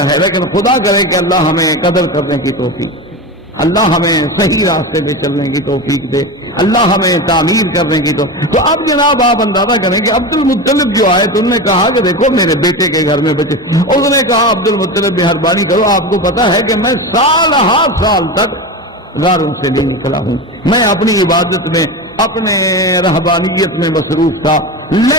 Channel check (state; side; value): normal; both; correlation 0.23